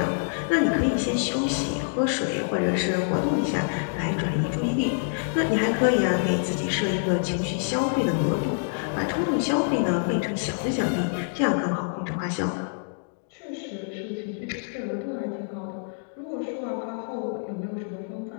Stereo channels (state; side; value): silent; right; digital silence